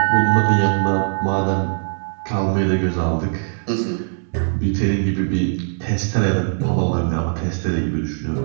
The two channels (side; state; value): left; silent; 62 dB below the other